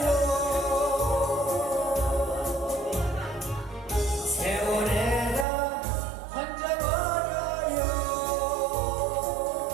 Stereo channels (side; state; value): left; drops out; at 5.5 s